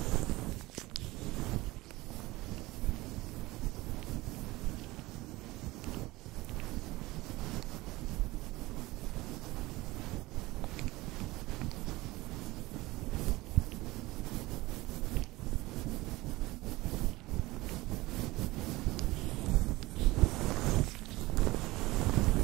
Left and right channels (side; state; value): left; quieter; 19.8 dB